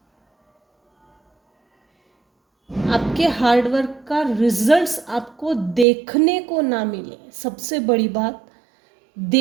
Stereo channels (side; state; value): left; drops out; at 5.9 s